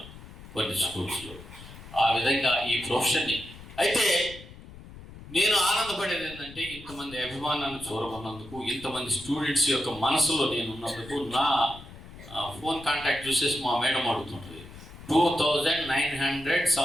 కొన్ని స్కూల్స్లో. ఆ విధంగా ఈ ప్రొఫెషన్ని. అయితే నేను ఆనందపడేది ఏంటంటే, ఇంతమంది అభిమానాన్ని చూరమన్నందుకు, ఇంతమంది స్టూడెంట్స్ యొక్క మనసులో నేను ఉన్నందుకు. నా ఫోన్ కాంటాక్ట్ చూసేసి మా మేడం అడుగుతుంటుంది, 2,900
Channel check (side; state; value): left; noise; rumble, 17 dB below the sound